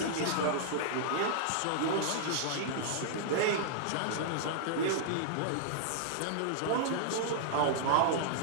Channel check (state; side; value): different; both; correlation -0.01